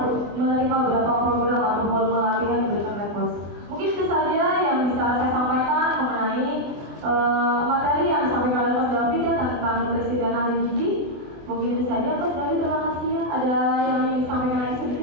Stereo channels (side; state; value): left; late; 24 ms